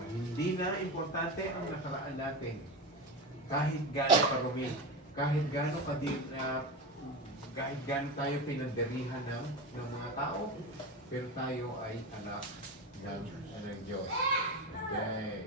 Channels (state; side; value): normal; both; correlation 0.21